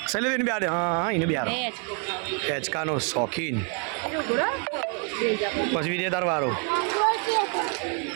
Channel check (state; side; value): quieter; left; 39.6 dB